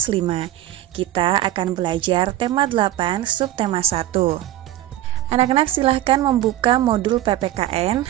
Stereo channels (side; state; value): left; quieter; 13.6 dB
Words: 5. Kita akan belajar tema 8, subtema 1. Anak-anak silahkan membuka modul PPKN